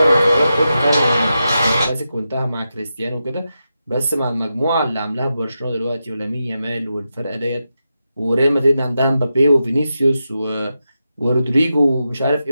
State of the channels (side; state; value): both; inverted; correlation -0.89